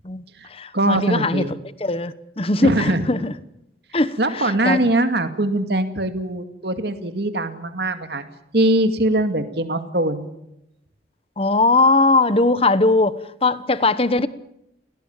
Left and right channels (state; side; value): normal; both; correlation 0.22